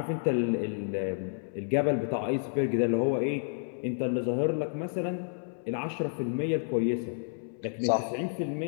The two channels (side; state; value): right; silent; 58 dB below the other